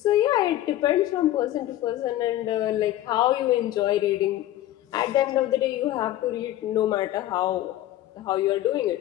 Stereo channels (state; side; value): quieter; right; 14.0 dB